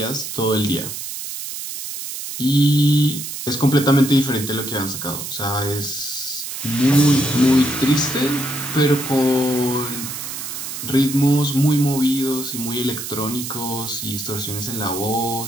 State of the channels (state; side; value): noise; right; hiss, 7 dB below the sound